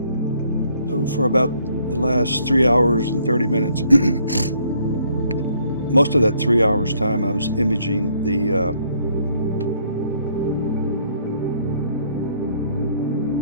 So for about the last 3 hours and 30 minutes, most of that 3 hours time I was imaging the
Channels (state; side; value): inverted; both; correlation -0.66